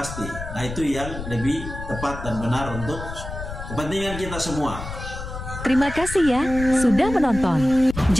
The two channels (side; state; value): left; noise; rumble, 9 dB below the sound